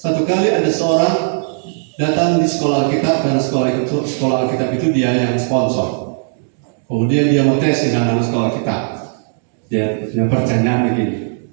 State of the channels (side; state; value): left; silent; digital silence